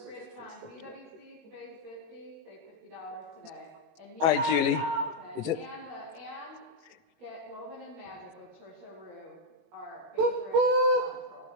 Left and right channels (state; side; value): late; left; 18 ms